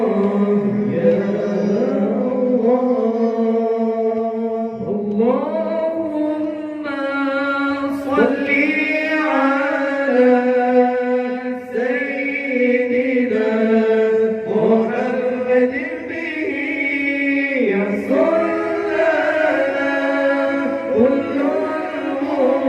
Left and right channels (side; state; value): both; identical; correlation 1.00